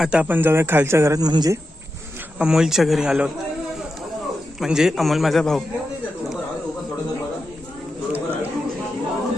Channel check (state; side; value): normal; both; correlation 0.89